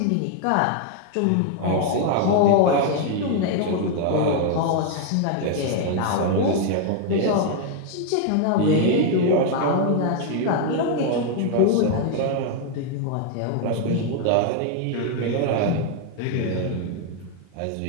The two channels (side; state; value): both; different; correlation 0.00